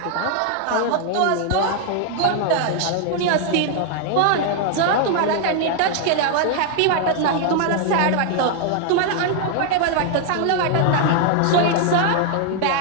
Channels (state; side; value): different; both; correlation 0.00